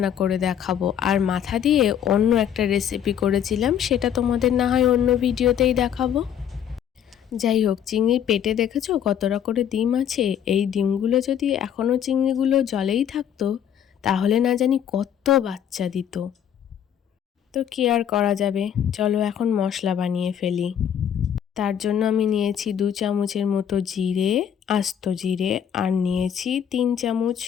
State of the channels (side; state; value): right; quieter; 9.3 dB